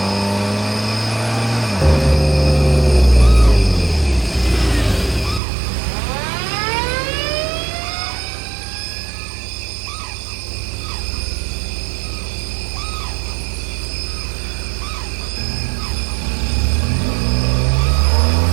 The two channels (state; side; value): drops out; left; at 5.4 s